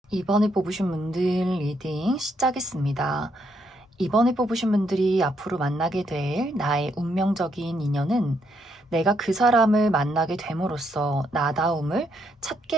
이번에 뽑으신 분들 리딩 시작하겠습니다. 이번에 뽑으신 분들이 앞으로 만나게 될 나의 운명적인 인연은 내가 그 사람을 만나게 됨으로써 나다움을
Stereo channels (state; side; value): normal; both; correlation 0.75